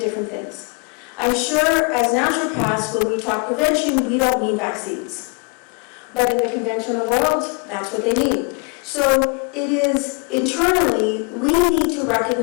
things. I'm sure as naturopaths, when we talk prevention, we don't mean vaccines. But in the conventional world, that's what they mean. So it is internally, we need to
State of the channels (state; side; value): quieter; right; 33.4 dB